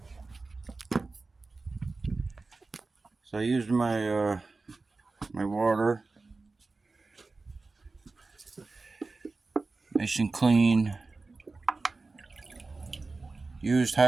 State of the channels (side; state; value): left; quieter; 3.7 dB